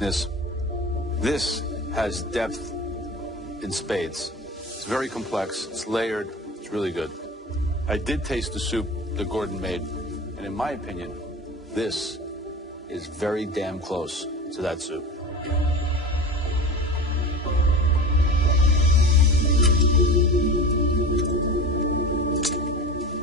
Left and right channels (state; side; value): normal; both; correlation 0.32